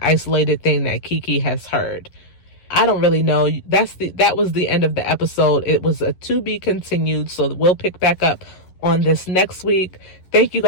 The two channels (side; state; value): right; late; 11 ms